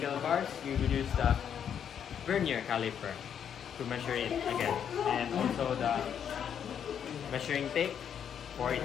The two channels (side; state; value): right; quieter; 8.5 dB